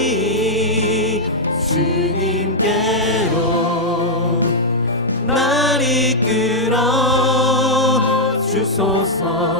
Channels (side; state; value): both; normal; correlation -0.04